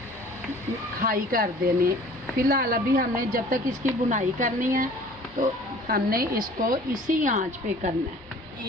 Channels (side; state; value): both; normal; correlation 0.49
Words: हाई कर देनी। फ़िलहाल अभी हमने जब तक इसकी बुनाई करनी है तो हमने इसको इसी आंच पे करना है।